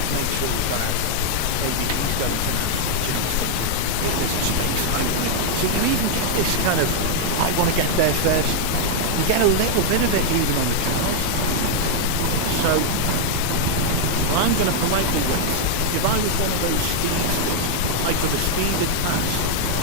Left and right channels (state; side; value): different; both; correlation 0.00